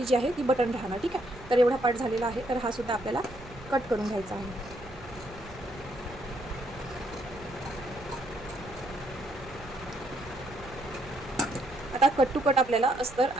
जी आहे ती बटन राहणार, ठीक आहे. तर एवढा पार्ट झालेला आहे. तर हा सुद्धा आपल्याला कट करून घ्यायचा आहे. आता कट टू कट आपल्याला अस्तर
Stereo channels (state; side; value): noise; right; rumble, 18 dB below the sound